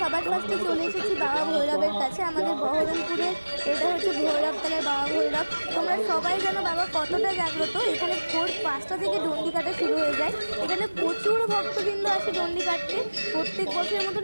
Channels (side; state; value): both; inverted; correlation -1.00